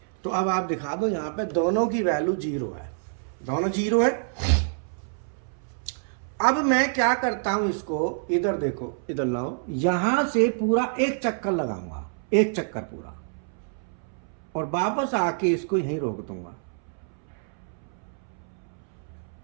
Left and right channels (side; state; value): left; silent; 60 dB below the other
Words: तो अब आप दिखा दो, यहाँ पे दोनों की वैल्यू 0 है, दोनों 0 है। अब मैं क्या करता हूं, इसको इधर देखो, इधर लाओ, यहां से पूरा एक चक्कर लगाऊंगा, एक चक्कर पूरा, और वापस आके इसको यहीं रोक दूंगा।